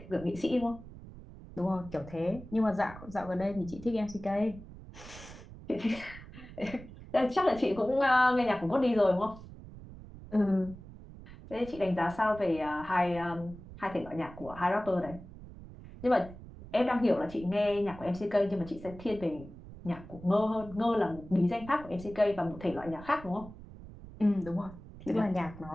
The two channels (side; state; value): right; noise; rumble, 16 dB below the sound